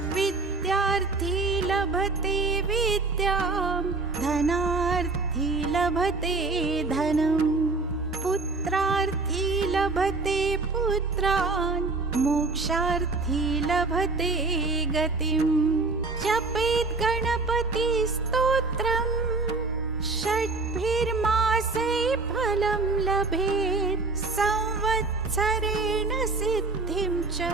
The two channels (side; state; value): left; quieter; 3.7 dB